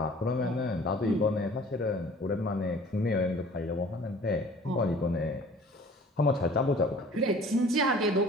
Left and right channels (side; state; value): both; normal; correlation 0.49